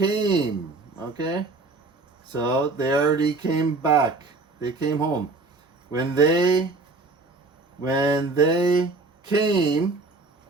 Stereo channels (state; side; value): quieter; left; 3.5 dB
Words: Okay. So they already came back. They came home. When they came